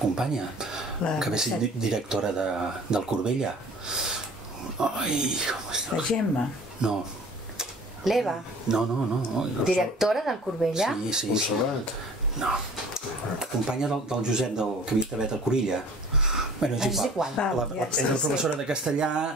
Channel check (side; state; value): both; normal; correlation 0.47